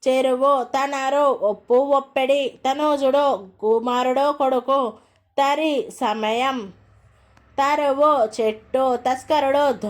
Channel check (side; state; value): both; identical; correlation 1.00